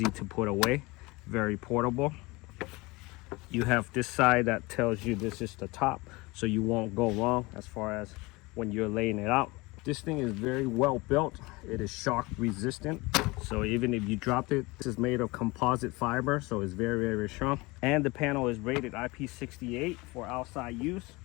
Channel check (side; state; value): right; quieter; 23.5 dB